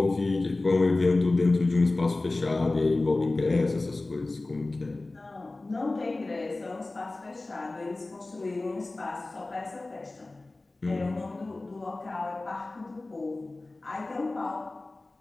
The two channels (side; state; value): right; quieter; 3.1 dB